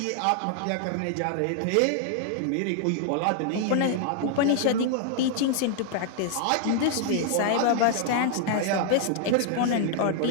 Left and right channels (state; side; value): different; both; correlation 0.00